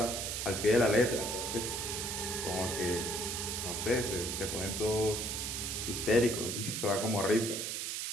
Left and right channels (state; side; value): noise; right; hiss, 3 dB below the sound